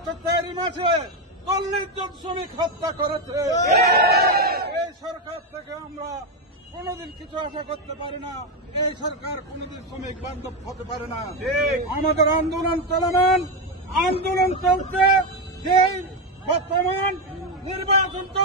4 মাসে 40 জন শ্রমিক হত্যা করেছে। এই সরকার থেকে আমরা কোনদিন কিছু আশা করতে পারি না। এই সরকার কোনদিন শ্রমিক বান্ধব হতে পারে না। আমাদের আন্দোলন চলমান, আন্দোলন চলছে। যেই বর্তমান নির্বাচন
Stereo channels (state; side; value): normal; both; correlation 0.08